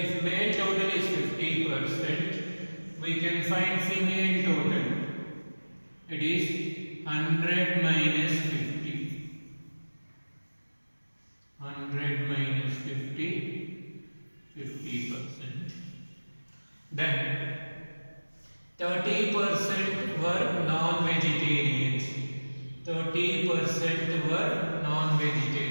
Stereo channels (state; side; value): inverted; both; correlation -1.00